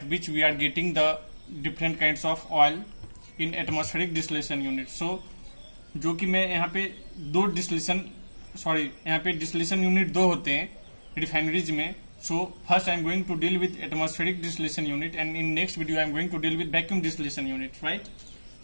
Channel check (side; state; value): both; inverted; correlation -1.00